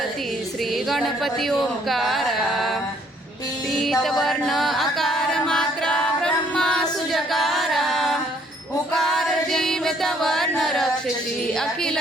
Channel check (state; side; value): normal; both; correlation 0.64